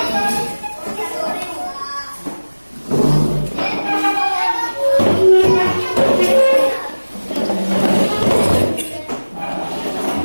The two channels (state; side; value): inverted; both; correlation -1.00